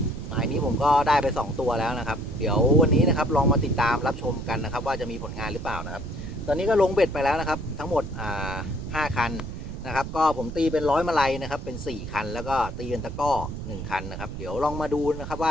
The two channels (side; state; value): right; noise; rumble, 8 dB below the sound